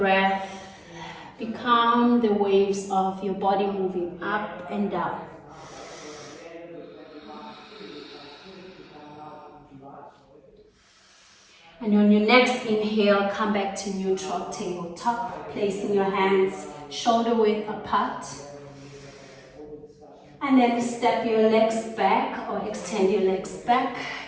become the waves of your body moving up and down. And on your next inhale, come back to neutral tabletop, placing your hands shoulder width apart. And then step your legs back or extend your legs back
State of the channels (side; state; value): both; identical; correlation 1.00